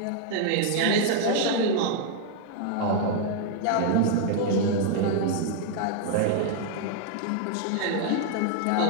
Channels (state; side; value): different; both; correlation 0.00